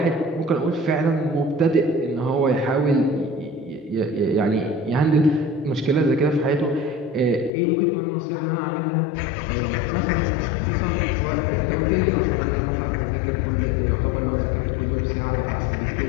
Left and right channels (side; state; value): right; drops out; at 7.5 s